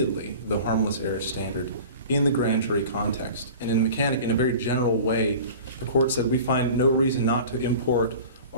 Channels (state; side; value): inverted; both; correlation -0.39